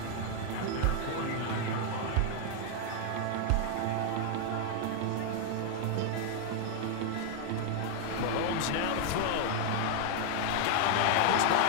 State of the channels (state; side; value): different; both; correlation 0.00